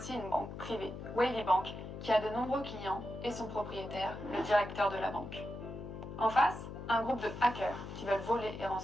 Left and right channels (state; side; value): noise; left; hum, 9 dB below the sound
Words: une banque privée, Wavy Bank, qui a de nombreux clients et son propriétaire, le directeur de la banque. En face, un groupe de hackers qui veulent voler et